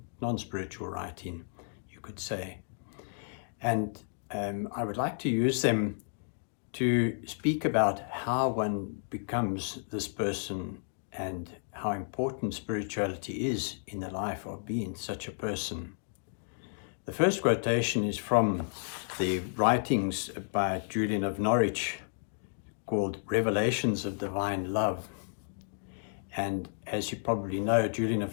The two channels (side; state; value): right; silent; digital silence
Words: non-spiritual writing, you could say. And I would like to use them to speak about how one becomes this person and how important spirituality is in the life of being such a person. The first quotation is from the writings by Julian of Norwich called Revelations of Divine Love. And as you probably know, Julian